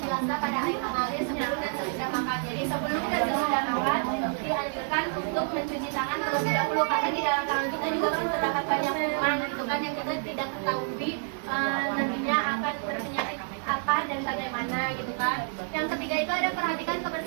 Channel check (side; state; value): left; silent; 59 dB below the other